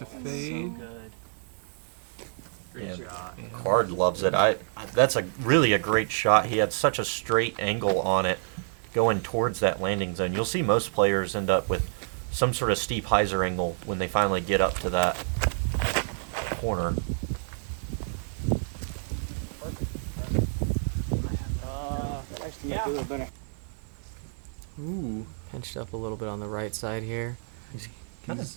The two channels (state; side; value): silent; left; digital silence